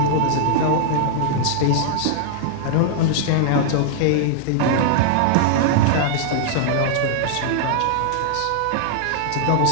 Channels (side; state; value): both; different; correlation -0.01